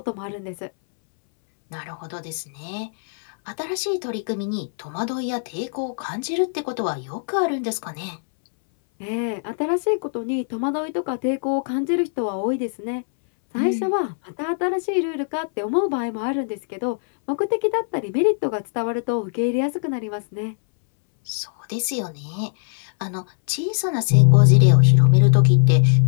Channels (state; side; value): silent; right; 64 dB below the other